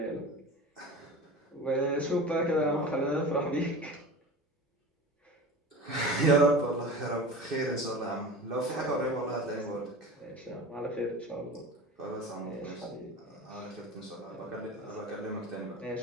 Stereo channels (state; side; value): normal; both; correlation 0.34